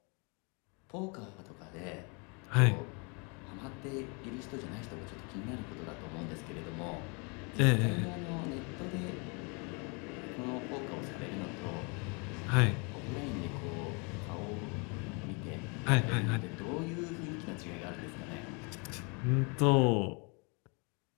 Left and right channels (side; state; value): right; quieter; 33.1 dB